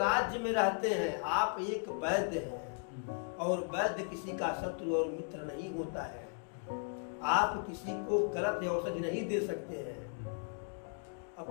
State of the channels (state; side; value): silent; right; 54 dB below the other